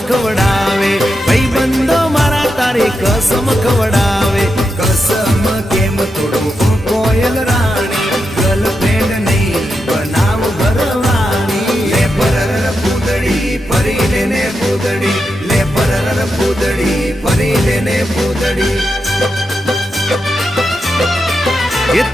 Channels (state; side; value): normal; both; correlation 0.87